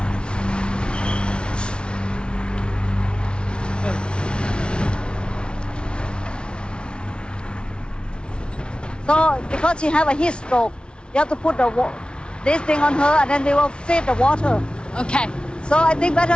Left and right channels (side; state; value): right; late; 0.057 ms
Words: So because she have a heat stroke, you have to put this thing on her and then we will feed the water. Okay. So I think